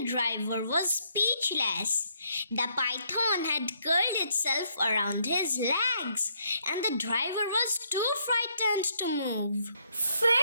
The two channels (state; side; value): inverted; both; correlation -0.71